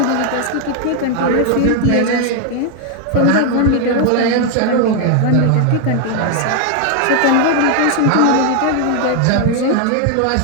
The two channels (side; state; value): both; different; correlation 0.01